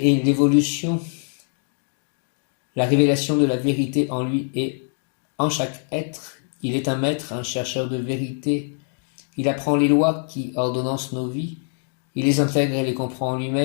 l'évolution, la révélation de la vérité en lui et en chaque être. Il est un maître, un chercheur de vérité. Il apprend les lois qui ordonnancent nos vies. Il les intègre et les comprend en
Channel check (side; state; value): right; silent; 58 dB below the other